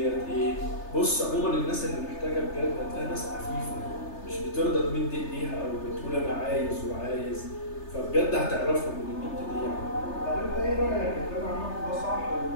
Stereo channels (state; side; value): late; right; 3.3 ms